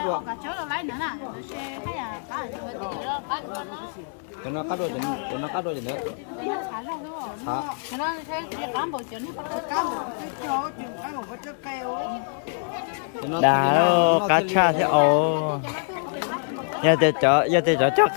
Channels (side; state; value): right; silent; 61 dB below the other